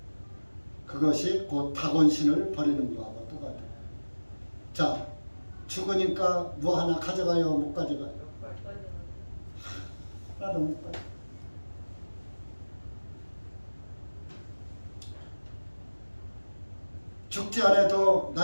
그것이 곧 다곤신을 버리는 거하고 똑같아요. 자, 죽으니까 뭐 하나 가져가요? 못 가져가요? 하나도 못 가요. 죽지 않아도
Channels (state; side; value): inverted; both; correlation -1.00